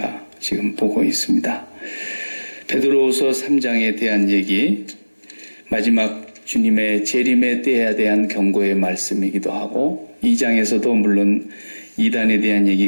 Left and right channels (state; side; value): inverted; both; correlation -1.00